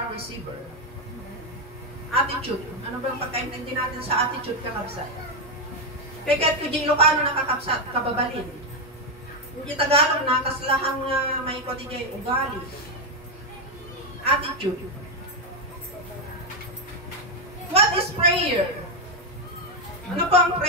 receiver. Attitude. Ano ba ang pagkaintindi natin sa attitude kakabsat? Kaya kahit kung Ilocano nakakabsat, kababalin. Hindi Tagalog na, kaslahang may kotigay ugali. Attitude. What is prayer? Ano po ang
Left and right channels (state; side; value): normal; both; correlation 0.05